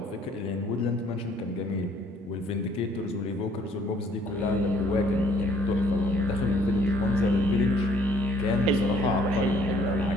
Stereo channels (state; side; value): normal; both; correlation 0.61